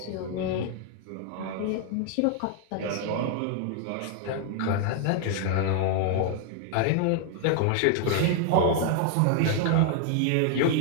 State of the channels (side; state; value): both; different; correlation 0.00